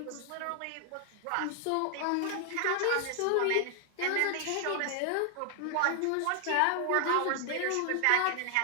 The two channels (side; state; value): both; different; correlation 0.00